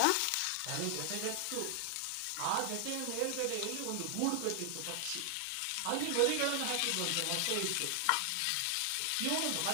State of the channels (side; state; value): both; different; correlation 0.00